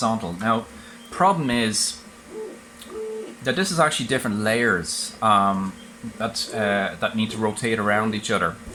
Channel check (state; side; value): identical; both; correlation 1.00